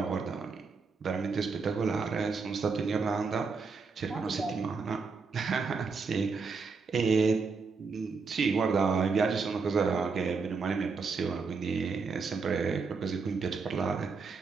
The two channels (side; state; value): left; quieter; 4.8 dB